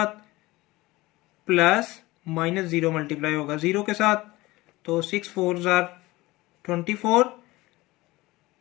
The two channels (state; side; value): quieter; right; 20.0 dB